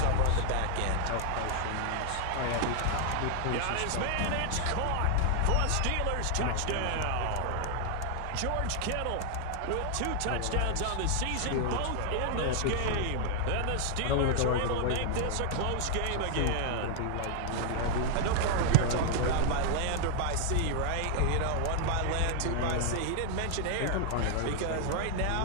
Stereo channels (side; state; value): both; different; correlation 0.00